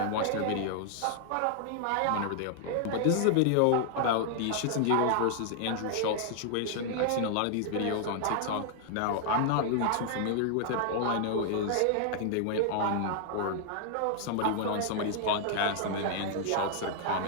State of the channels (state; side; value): different; both; correlation 0.00